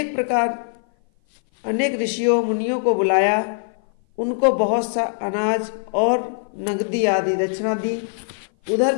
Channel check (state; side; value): silent; right; 57 dB below the other